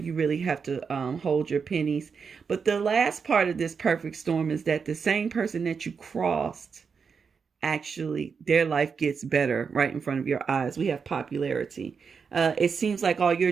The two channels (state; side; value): quieter; left; 5.8 dB